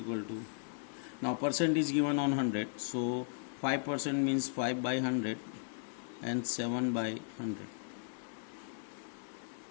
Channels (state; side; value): silent; right; digital silence